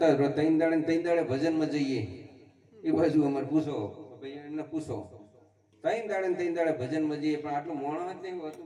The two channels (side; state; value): both; identical; correlation 1.00